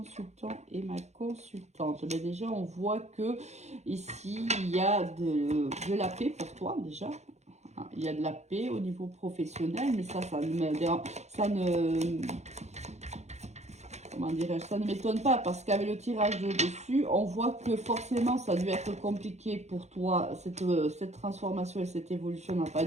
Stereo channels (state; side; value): late; left; 0.33 ms